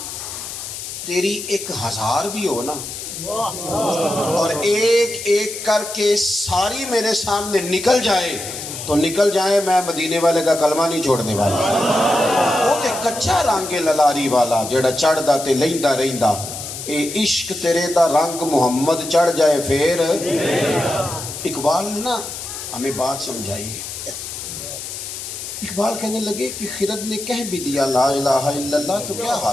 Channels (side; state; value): left; noise; hiss, 8 dB below the sound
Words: تیری 1000 بھی ہو نا اور ایک ایک کر کے ساری میرے سامنے نکل جائے تو نکل جائے میں مدینے والے کا کلمہ نہیں چھوڑنے والا وہ تے کچا رنگ للاری والا جڑا چڑھدا تے لیندا رہندا اے عشق تیرے دا رنگ محمد چڑھ جائے پھر اقبال نے نا ہمیں بات سمجھائی ہے اقبال کہنے لگے کہ خرد نے کہہ بھی دیا لا الہ الا اللہ تو کیا